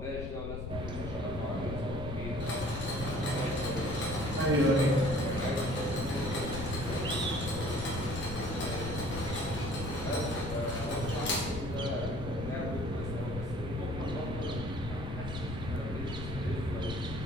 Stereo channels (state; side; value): noise; left; rumble, 6 dB below the sound